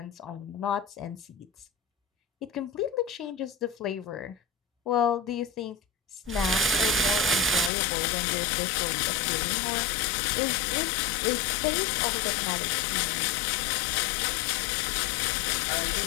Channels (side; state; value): right; drops out; at 7.7 s